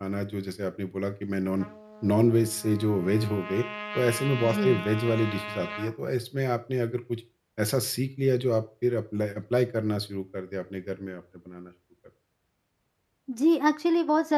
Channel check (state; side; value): identical; both; correlation 1.00